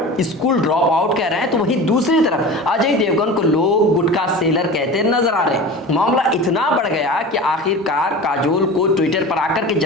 स्कूल ड्रॉप आउट कह रहे हैं, तो वहीं दूसरी तरफ अजय देवगन को लोग गुटखा सेलर कहते नजर आ रहे हैं। मामला इतना बढ़ गया कि आखिरकार काजोल को ट्विटर पर आकर के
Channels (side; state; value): both; normal; correlation 0.34